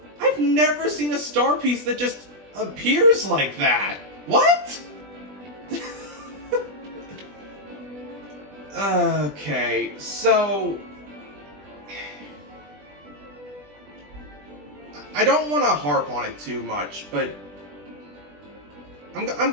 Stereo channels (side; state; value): left; late; 20 ms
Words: I've never seen a star piece that just appears like that. What? Okay, so... I don't want to harp on it too much, but... I'm